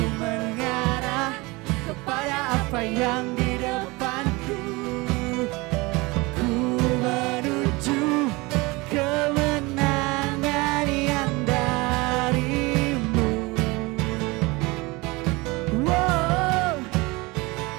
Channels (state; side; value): quieter; left; 24.0 dB